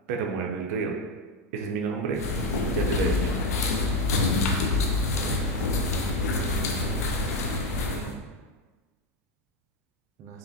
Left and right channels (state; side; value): normal; both; correlation 0.09